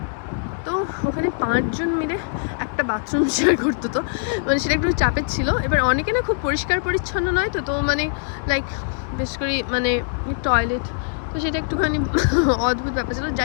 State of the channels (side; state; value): right; silent; 64 dB below the other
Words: তো ওখানে 5 জন মিলে একটা বাথরুম শেয়ার করতো, তো মানে সেটা একটু চাপের ছিল। এবার অনেকে না খুব পরিষ্কার পরিচ্ছন্ন নয়, তো মানে লাইক বেশ করে মানে টয়লেট, তো সেটা একটুখানি অদ্ভুত ব্যাপার ছিল।